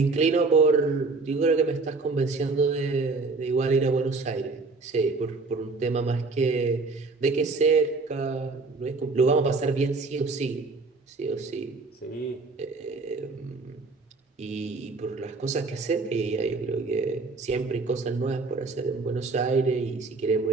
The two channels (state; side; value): quieter; left; 3.8 dB